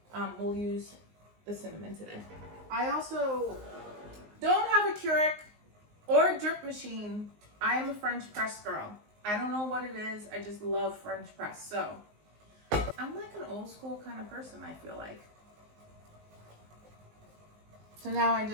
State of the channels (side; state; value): left; late; 19 ms